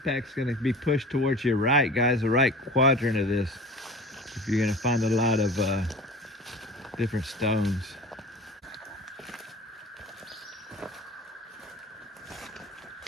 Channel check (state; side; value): normal; both; correlation 0.39